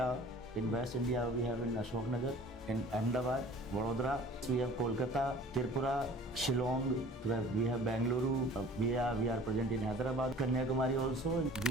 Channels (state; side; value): normal; both; correlation 0.47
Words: in West India we have in Ashok Nagar, in Ahmedabad, Vadodara, we have Kolkata, Tripura, Shillong, we have Bengaluru, we are present in Hyderabad, Kanyakumari also.